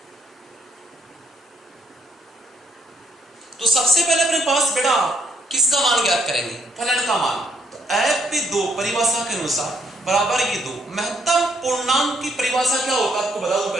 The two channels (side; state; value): both; normal; correlation 0.70